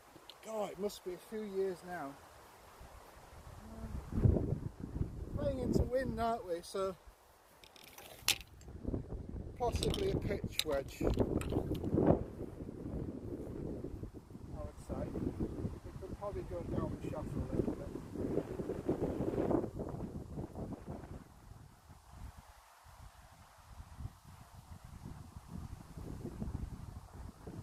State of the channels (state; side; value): identical; both; correlation 1.00